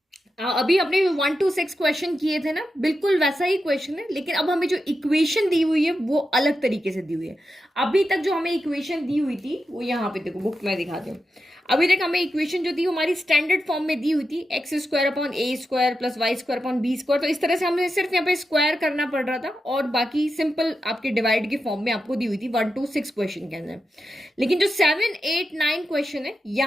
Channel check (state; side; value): normal; both; correlation 0.88